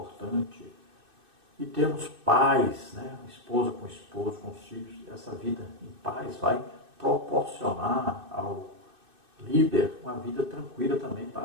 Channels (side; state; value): left; late; 2.6 ms